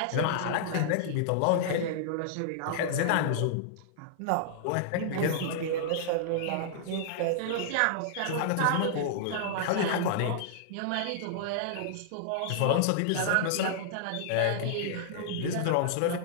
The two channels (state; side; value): different; both; correlation -0.01